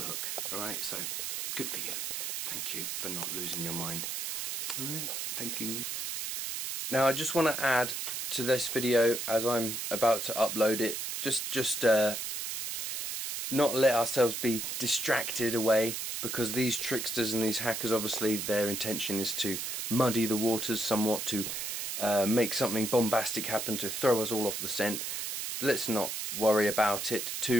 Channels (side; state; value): right; noise; hiss, 3 dB below the sound